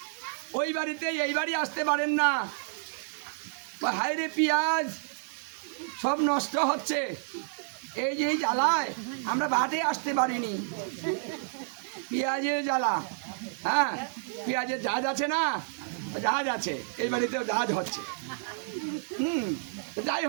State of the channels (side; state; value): left; silent; digital silence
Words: ওই বাড়িতে এই বাড়ি আসতে পারেন না। হায়রে পেঁয়াজ সব নষ্ট হচ্ছে, এই যে জ্বালায় আমরা বাটে আসতে পারিনি। পেঁয়াজের জ্বালা, হ্যাঁ, পেঁয়াজের জাহাজ আছে না? জাহাজ আছে, এই বাড়িতেও জাহাজ হচ্ছে। যাই